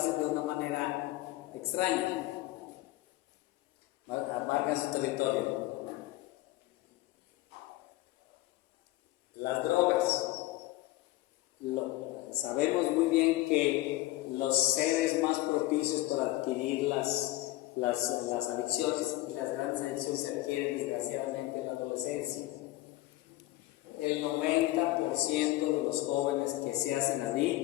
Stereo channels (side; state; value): right; quieter; 17.4 dB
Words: de una manera extraña. Marcan su territorio. Las drogas. Sabemos muy bien que los seres más propicios para adquirir las adicciones, y las grandes adicciones se adquieren desgraciadamente en la adolescencia. El 90% de los jóvenes que se hacen